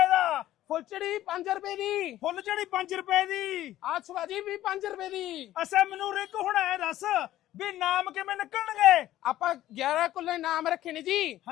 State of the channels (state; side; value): quieter; right; 14.0 dB